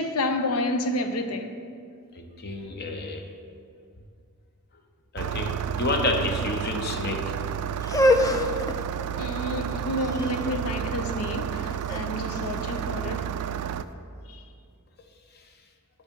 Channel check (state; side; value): normal; both; correlation 0.25